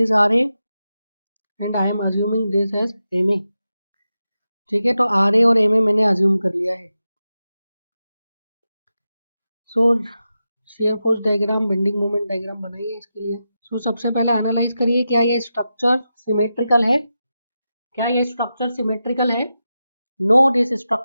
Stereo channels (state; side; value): inverted; both; correlation -0.90